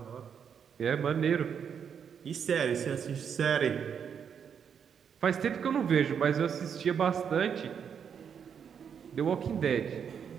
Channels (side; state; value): left; quieter; 7.4 dB